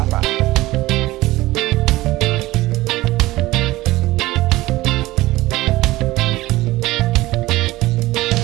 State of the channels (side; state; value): left; quieter; 18.1 dB